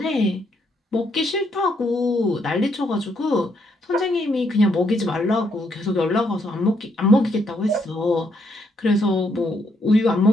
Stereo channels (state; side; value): normal; both; correlation 0.74